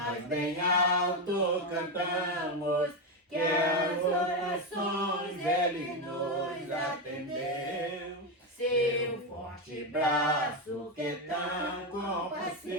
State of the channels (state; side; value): normal; both; correlation 0.10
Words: bem alto cantamos, que as orações Ele nos atendeu. Seu forte braço que é tão